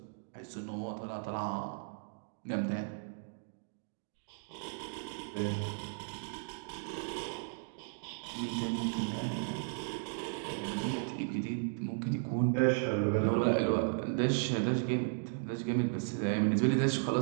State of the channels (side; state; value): left; silent; digital silence